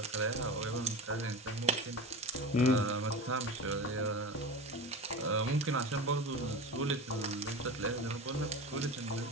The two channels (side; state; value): both; normal; correlation 0.29